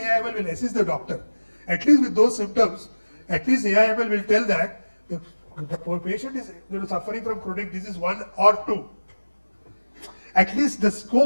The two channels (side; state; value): both; inverted; correlation -1.00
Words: will assist the doctor? At least with those symptoms, at least AIML will tell that the patient is suffering from chronic disease 1 or 2. At least the